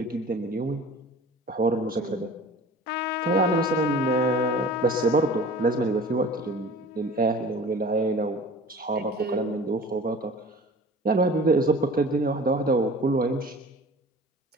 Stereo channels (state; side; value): normal; both; correlation 0.42